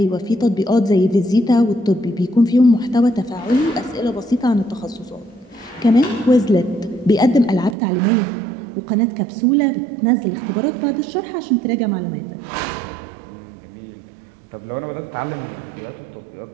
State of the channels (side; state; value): left; drops out; at 7.8 s